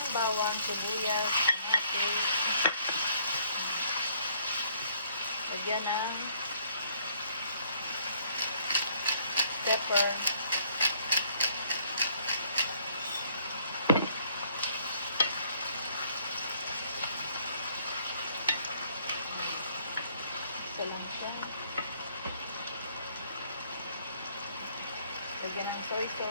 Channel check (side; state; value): both; inverted; correlation -0.64